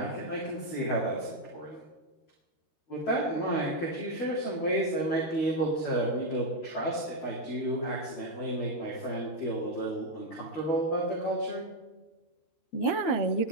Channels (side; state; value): right; late; 13 ms